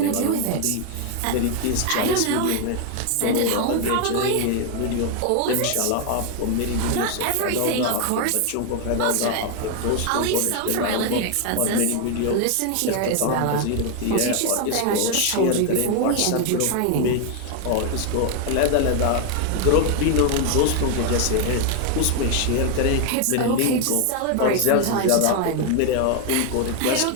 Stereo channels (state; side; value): different; both; correlation 0.01